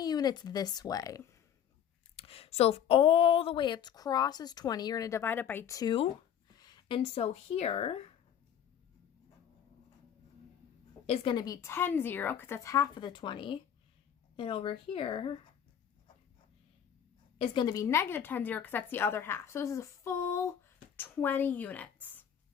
units this way. So if all the way it's crosses 20, you're going to divide it by 2. And so here is going to be 10, 0, because that's half of the 20. And over here is going to be negative 10, 0, because that's the other half. So this is a full 20 units.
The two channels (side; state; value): right; quieter; 9.1 dB